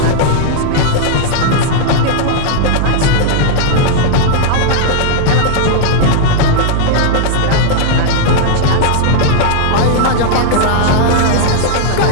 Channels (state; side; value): different; both; correlation -0.01